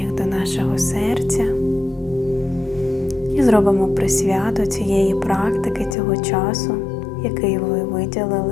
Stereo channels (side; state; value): right; drops out; at 6.0 s